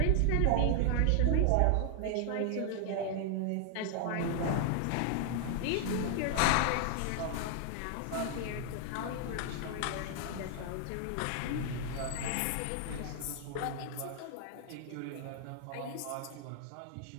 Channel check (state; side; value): different; both; correlation 0.00